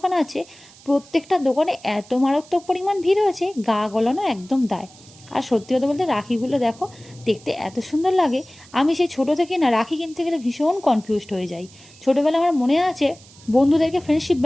আছে। প্রত্যেকটা দোকানে এত মারাত্মক পরিমাণ ভিড় হয়েছে, গা গলানো একদম দায়। আর সত্যি কথা বলতে রাখিগুলো দেখো, দেখতে এত সুন্দর লাগে। আমি সেই ছোটো থেকে না রাখি কিনতে গেলে ভীষণ কনফিউজড হয়ে যাই। ছোটোবেলা আমার মনে আছে, বন্ধুদেরকে ফ্রেন্ডশিপ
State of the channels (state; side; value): noise; right; hiss, 23 dB below the sound